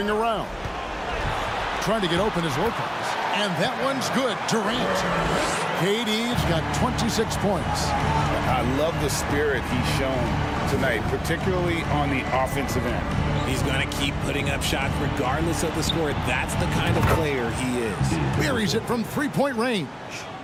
around. Trying to get open is Lopez. And that one's good. Durant. KD's got 26 points. I love the spirit he's shown tonight, particularly on the offensive end. He's going to keep putting up shots regardless of the score. That's the kind of player he is. Buries it from 3-point range.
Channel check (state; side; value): identical; both; correlation 1.00